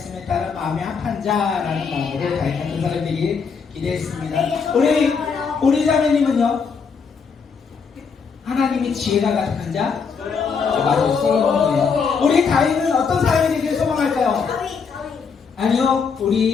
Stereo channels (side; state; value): right; quieter; 5.7 dB